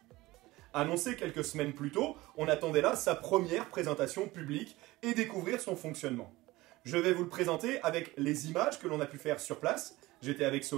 Annoncé quelques semaines plus tôt, on attendait là sa première présentation publique et découvrir son fonctionnement. Je vais vous le présenter avec les images que l'on a pu faire sur place. J'étais avec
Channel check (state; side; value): quieter; left; 19.3 dB